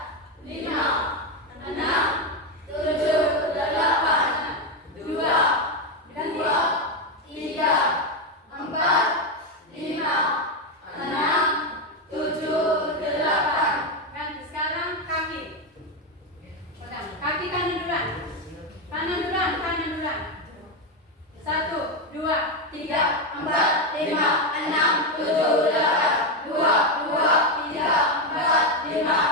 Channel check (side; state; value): both; normal; correlation 0.08